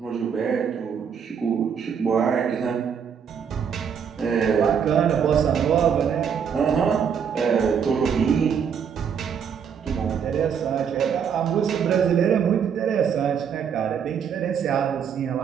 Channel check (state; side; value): quieter; left; 7.4 dB